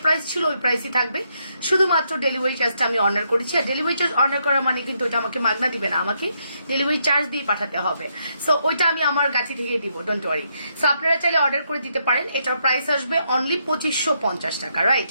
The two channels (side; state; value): both; inverted; correlation -0.77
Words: প্রাইস ছিল ওই প্রাইসই থাকবে, শুধুমাত্র ডেলিভারি চার্জটা আমি অনার করেছি। আর ডেলিভারি চার্জ অনার করা মানে কিন্তু ওটা আমাকে মাগনা দিবে না, আমাকে ডেলিভারি চার্জ দিয়ে পাঠাতে হবে। সো ওইটা আমি আমার গাছি থেকে দিব, ডোন্ট ওয়ারি। সো আপনারা চাইলে অর্ডার করে দিতে পারেন। এটার প্রাইস আসবে অনলি 2550 টাকা, রাইট?